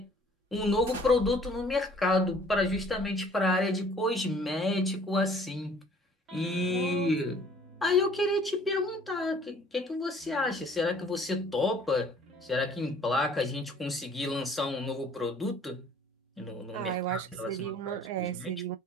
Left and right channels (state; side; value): normal; both; correlation 0.55